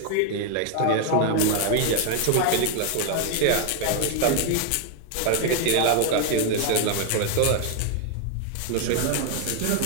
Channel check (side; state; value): both; different; correlation 0.01